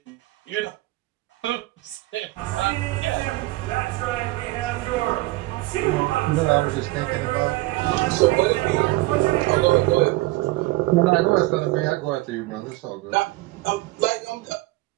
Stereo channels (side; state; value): left; quieter; 19.9 dB